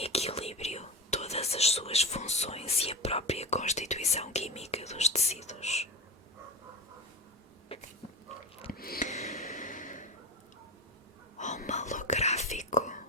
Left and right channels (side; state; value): both; normal; correlation 0.24